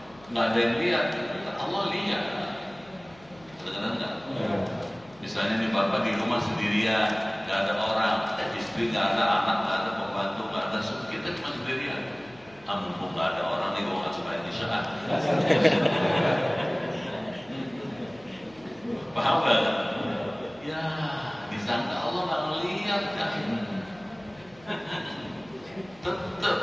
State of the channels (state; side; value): noise; left; hum, 26 dB below the sound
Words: nggak ada yang lihat, Allah lihat. Benar nggak? Misalnya nih bapak di rumah sendirian, nggak ada orang, istri nggak ada, anak nggak ada, pembantu nggak ada, Ada kita cuma sendirian. Mumpung nggak ada orang nih, gue nggak suka Isya. Paham nggak? Ya, disangka Allah nggak ngeliat kan? Tetap